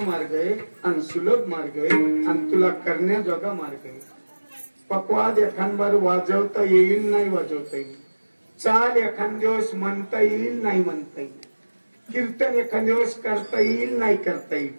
आहे आणि सुलभ मार्ग आहे आणि तुला करण्याजोगा मार्ग आहे. पकवाद एखादबार वाजवता येईल नाही वाजवता येईल. चाल एखाद दिवस म्हणता येईल नाही म्हणता येईल. कीर्तन एखाद दिवस करता येईल नाही करता येईल.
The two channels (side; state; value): both; inverted; correlation -1.00